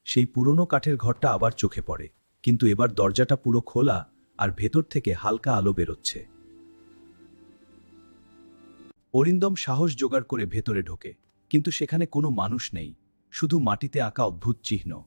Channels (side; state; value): both; inverted; correlation -1.00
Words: সেই পুরনো কাঠের ঘরটা আবার চোখে পড়ে, কিন্তু এবার দরজাটা পুরো খোলা আর ভেতর থেকে হালকা আলো বেরোচ্ছে। অরিন্দম সাহস জোগাড় করে ভেতরে ঢোকে, কিন্তু সেখানে কোনো মানুষ নেই, শুধু মাটিতে আঁকা অদ্ভুত চিহ্ন।